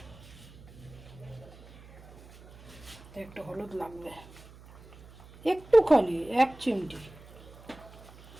একটু হলুদ লাগবে একটুখানি, 1 চিমটি।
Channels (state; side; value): noise; right; hum, 20 dB below the sound